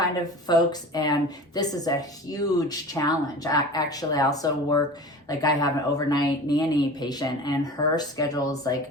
of folks. And this is a huge challenge. Actually, I also work, like I have an overnight nanny patient and her schedule is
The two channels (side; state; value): both; normal; correlation 0.36